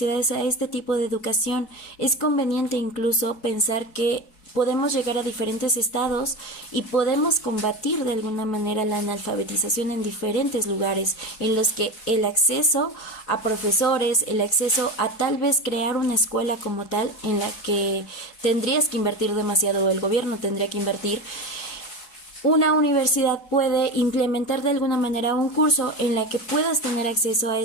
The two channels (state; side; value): late; right; 4.7 ms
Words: a este tipo de educación. Es conveniente incluso pensar que podemos llegar a diferentes estados y podemos combatir de alguna manera la analfabetización en diferentes lugares en los que el acceso a profesores, el acceso a tal vez crear una escuela como tal en la que tendrías que invertir demasiado o el gobierno tendría que invertir. Una universidad puede implementar de alguna manera un curso en la que puedas tener acceso a